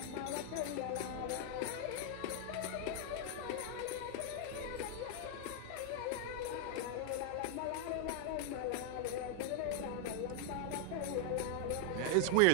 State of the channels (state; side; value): different; both; correlation 0.00